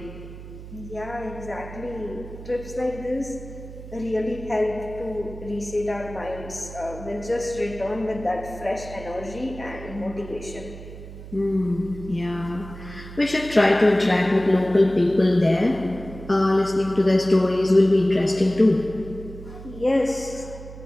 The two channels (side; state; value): right; noise; hum, 13 dB below the sound